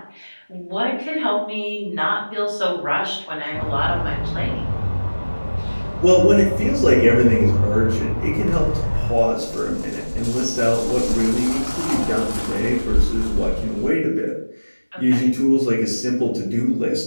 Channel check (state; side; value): inverted; both; correlation -1.00